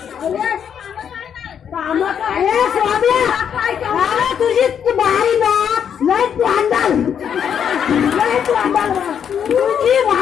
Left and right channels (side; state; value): right; quieter; 8.2 dB